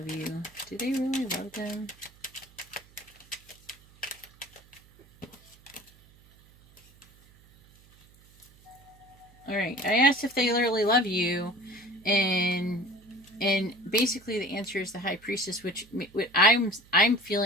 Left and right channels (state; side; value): noise; right; hum, 27 dB below the sound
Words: you. Do they really love them? All right. I asked if they literally love you, and basically the answer is the High Priestess, which I'm